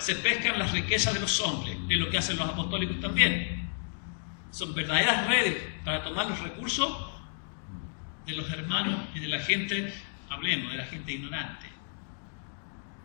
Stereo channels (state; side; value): silent; right; digital silence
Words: pescan las riquezas de los hombres, es lo que hacen los apostólicos también. Son verdaderas redes para tomar los recursos de los hermanos y de la gente, hablemos, de la gente ignorante.